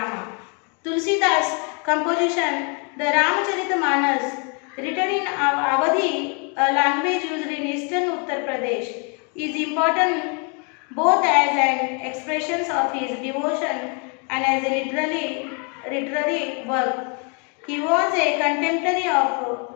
Tulsidas composition, the Ramacharita-manas, written in Awadhi, a language used in eastern Uttar Pradesh, is important both as an expression of his devotion and as a literary work. He was a contemporary of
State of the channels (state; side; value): quieter; right; 36.3 dB